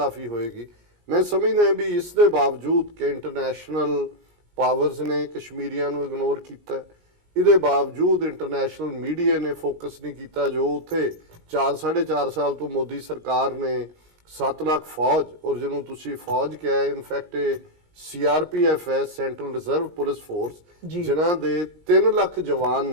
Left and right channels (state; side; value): late; left; 19 ms